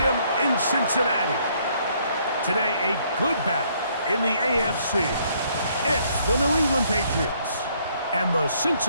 in Cincinnati. Today, a good battle in the AFC. It's the New England Patriots and the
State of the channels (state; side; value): inverted; both; correlation -0.67